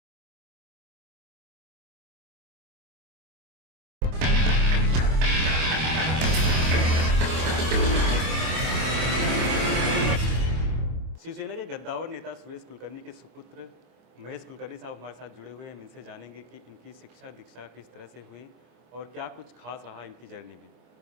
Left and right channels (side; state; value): left; late; 25 ms